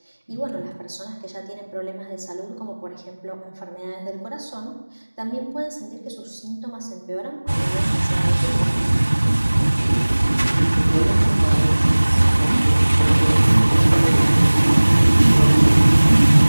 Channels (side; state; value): both; inverted; correlation -1.00